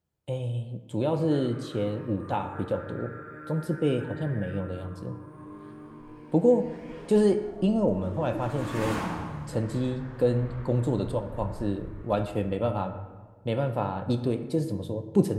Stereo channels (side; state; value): both; identical; correlation 1.00